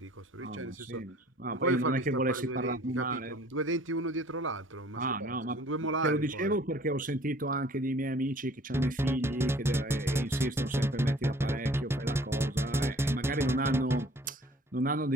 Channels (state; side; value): normal; both; correlation 0.53